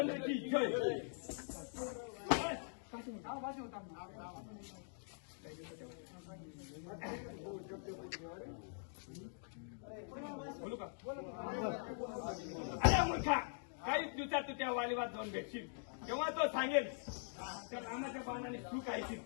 रामचंद्र की जय. बोलू का? अरे मूर्खा, काही दिवसात तू त्या वालीवाद जाऊन भेटशील तेव्हा तो सांगेल त्या रामाच्या बाणाने तू काय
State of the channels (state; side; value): silent; right; digital silence